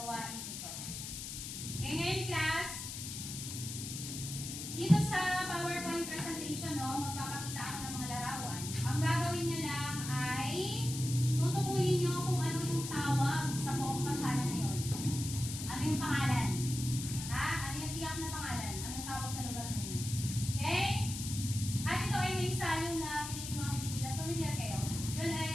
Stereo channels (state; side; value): noise; left; hiss, 7 dB below the sound